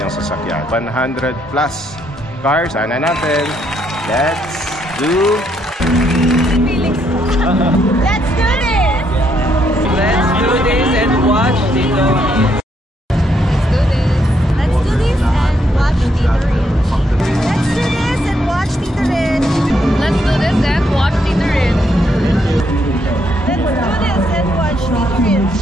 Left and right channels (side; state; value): both; normal; correlation 0.74